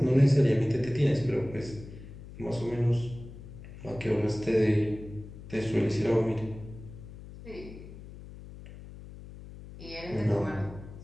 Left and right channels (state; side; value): noise; left; hum, 15 dB below the sound